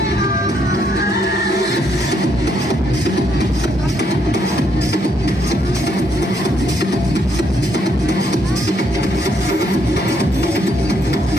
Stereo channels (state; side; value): normal; both; correlation 0.73